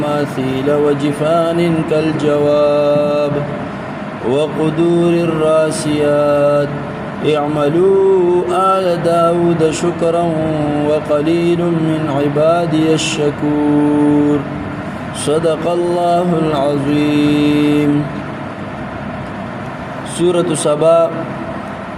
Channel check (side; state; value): both; identical; correlation 1.00